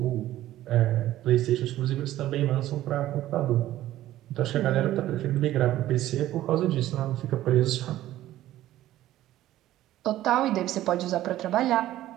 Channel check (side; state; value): left; quieter; 14.2 dB